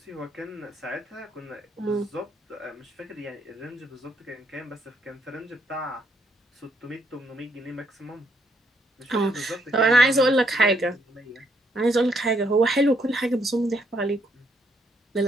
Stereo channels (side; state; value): both; normal; correlation 0.72